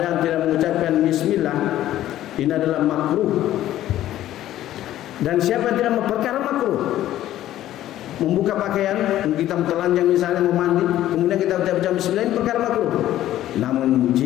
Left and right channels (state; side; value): quieter; right; 13.3 dB